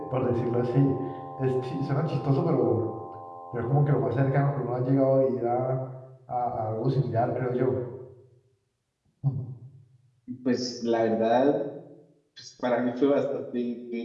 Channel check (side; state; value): both; identical; correlation 1.00